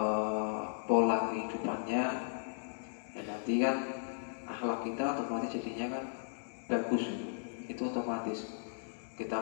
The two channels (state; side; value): silent; right; digital silence